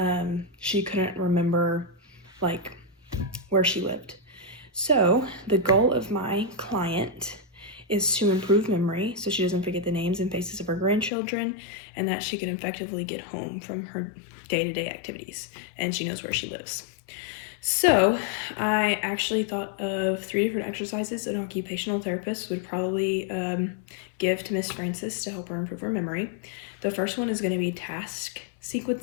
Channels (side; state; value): right; drops out; at 11.1 s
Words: she couldn't remember like where she lived. So the goal of my client is to improve memory so she doesn't forget the names and faces of her grandchildren, and that she can effectively get home from her day-to-day activities and she knows where she lives. So I actually thought of 3 different exercises an occupational therapist would probably give to Miss Frances to help her improve her memory. The first one is going to be task